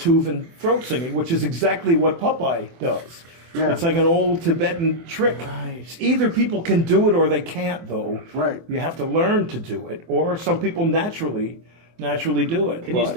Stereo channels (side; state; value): left; late; 24 ms